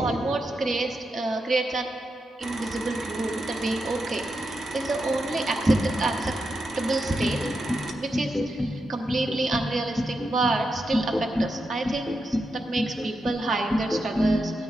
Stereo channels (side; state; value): both; normal; correlation 0.86